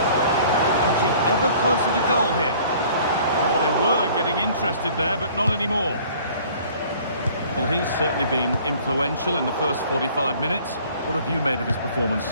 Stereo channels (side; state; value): both; inverted; correlation -0.52